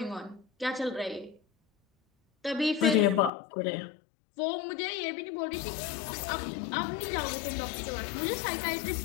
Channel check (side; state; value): right; drops out; at 3.3 s